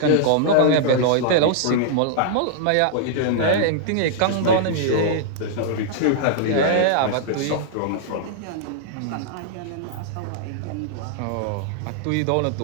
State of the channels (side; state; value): both; different; correlation -0.01